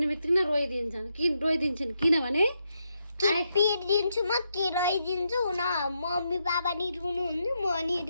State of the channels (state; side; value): inverted; both; correlation -0.82